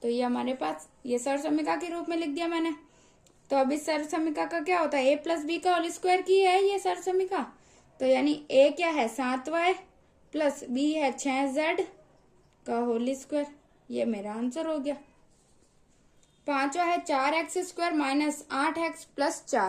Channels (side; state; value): both; identical; correlation 1.00